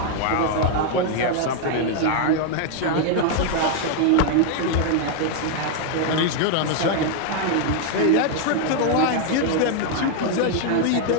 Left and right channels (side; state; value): both; different; correlation 0.00